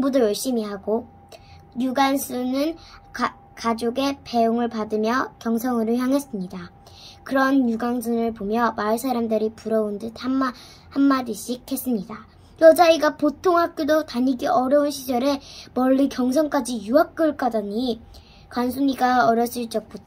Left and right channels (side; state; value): both; identical; correlation 1.00